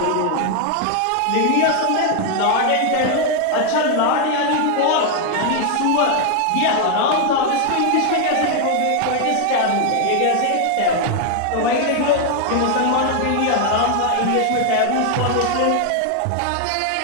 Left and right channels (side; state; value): both; different; correlation 0.00